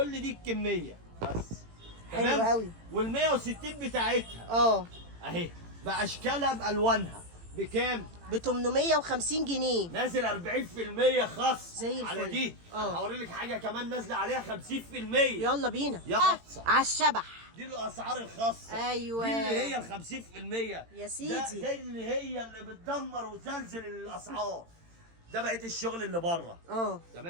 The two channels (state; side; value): late; left; 18 ms